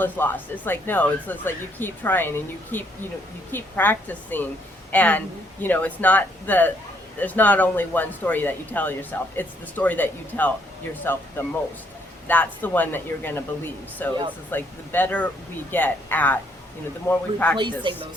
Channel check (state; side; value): normal; both; correlation 0.69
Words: is lost. It's like, no, it's just like you keep trying and you keep practicing, and it's not there's not only one story that you tell yourself, it's the story that you tell yourself the most. That's the one that you're going to believe. So It's just like the better we get at, the more we replacing practice. those